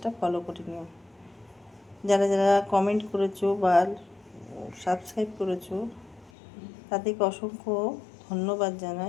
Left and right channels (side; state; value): right; drops out; at 6.3 s